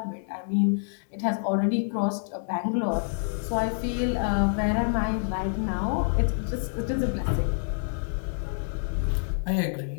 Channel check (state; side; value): silent; right; digital silence